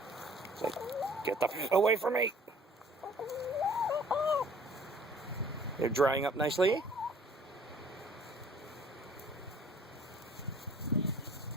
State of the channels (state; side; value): normal; both; correlation 0.53